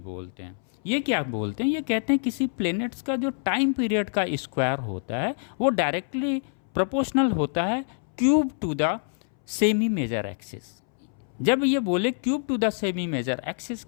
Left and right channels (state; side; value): silent; right; 61 dB below the other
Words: हैं। ये क्या बोलते हैं, ये कहते हैं किसी प्लेनेट्स का जो टाइम पीरियड का स्क्वायर होता है वो डायरेक्टली प्रोपोर्शनल होता है cube to the semi major axis. जब ये बोले cube to the semi major axis